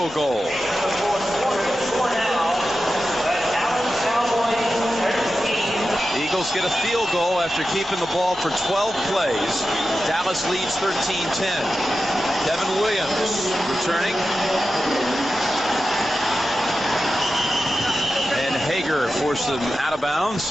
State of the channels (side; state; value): both; normal; correlation 0.92